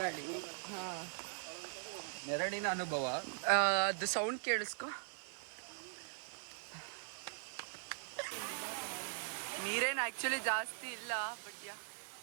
ಹಾಂ, ನೆರಳಿನ ಅನುಭವ. ಅದು ಸೌಂಡ್ ಕೇಳಿಸ್ಕೊ. ನೀರೇನು ಆ್ಯಕ್ಚುಲಿ ಜಾಸ್ತಿ ಇಲ್ಲ, ಬಟ್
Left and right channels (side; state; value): left; silent; 50 dB below the other